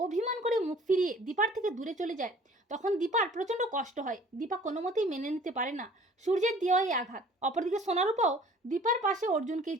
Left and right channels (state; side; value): normal; both; correlation 0.51